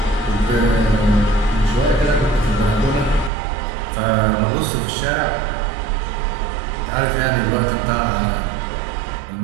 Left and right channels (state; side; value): drops out; left; at 3.3 s